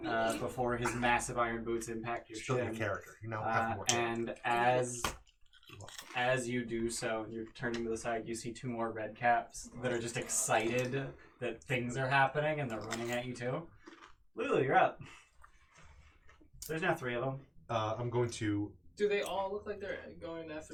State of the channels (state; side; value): identical; both; correlation 1.00